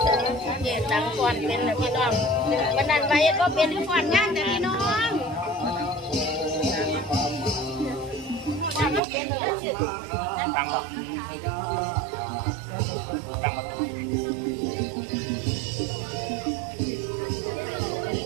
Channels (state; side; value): drops out; left; at 9.0 s